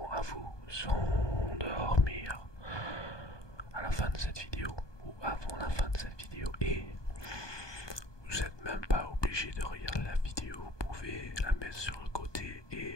à vous s'endormir à la fin de cette vidéo ou avant la fin de cette vidéo, et vous n'êtes même pas obligé de regarder la vidéo, vous pouvez la mettre sur le côté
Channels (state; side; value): late; right; 1.2 ms